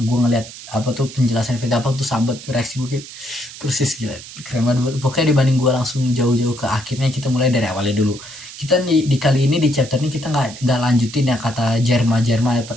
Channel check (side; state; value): right; noise; hiss, 15 dB below the sound